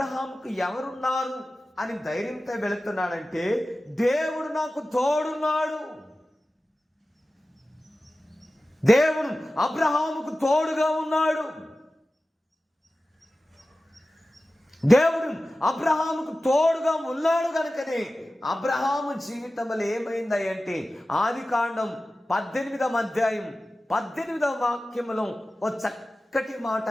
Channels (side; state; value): both; normal; correlation 0.95